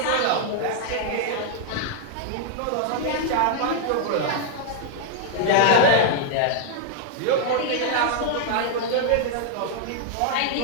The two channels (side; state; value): both; different; correlation 0.00